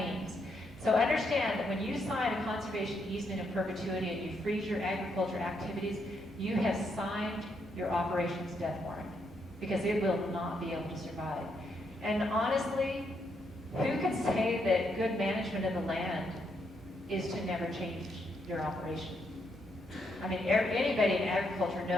So understand that when you sign a conservation easement in perpetuity and you freeze your agriculture activities, you have signed your operations death warrant because it will not be able to survive. And honestly, who can say that good management of the land is to never change your operation? I mean, anybody in agriculture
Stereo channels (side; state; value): both; normal; correlation 0.78